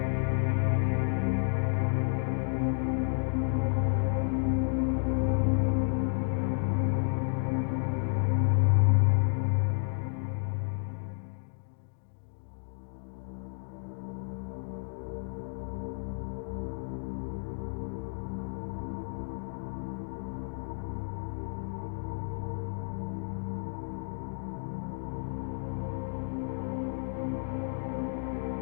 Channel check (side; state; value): right; silent; 57 dB below the other